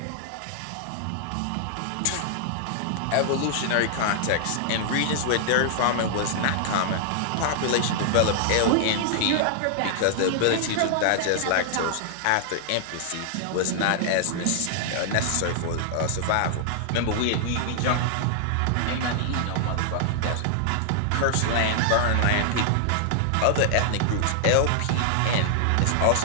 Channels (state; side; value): different; both; correlation -0.01